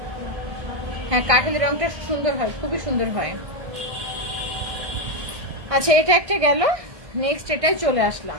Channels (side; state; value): left; late; 1.6 ms